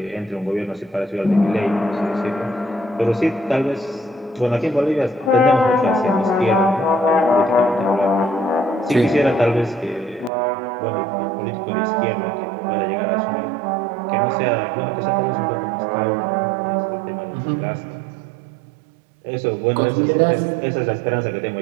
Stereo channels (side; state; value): left; drops out; at 10.3 s